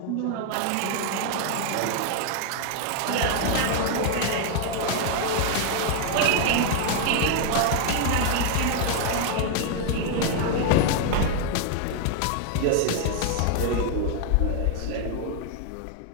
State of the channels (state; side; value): different; both; correlation 0.00